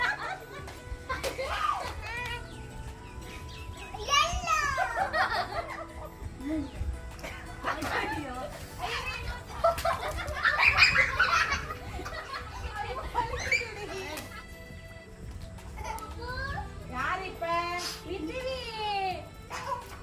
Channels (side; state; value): both; identical; correlation 1.00